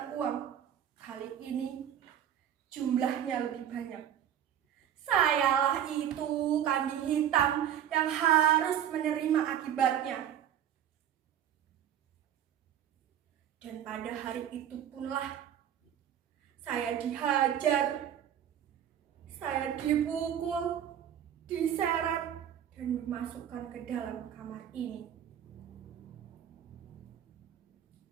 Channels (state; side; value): quieter; left; 10.0 dB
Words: uang. Kali ini jumlahnya lebih banyak. Sayalah itu kambing hitam yang harus menerima akibatnya. Dan pada hari itu punlah saya dihajar, saya dipukul, diseret, dan dimasukkan ke dalam kamar ini.